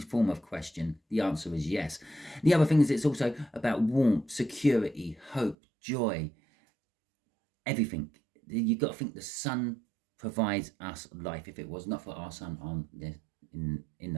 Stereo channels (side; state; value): left; drops out; at 5.6 s